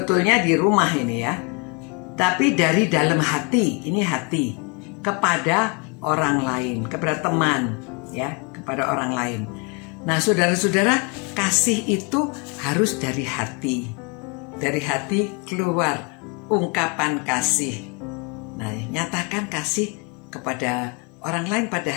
di rumah ini, ya. Tapi dari dalam hati, ini hati, kepada orang lain, kepada teman, ya, kepada orang lain. Nah, saudara-saudara, kasih itu harus dari hati. Dari hati keluar ungkapan kasih. Nah, nyatakan kasih kepada orang lain pada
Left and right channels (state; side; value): quieter; right; 32.2 dB